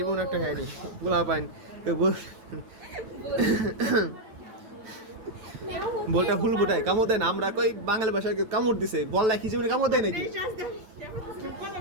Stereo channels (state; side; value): late; left; 9.2 ms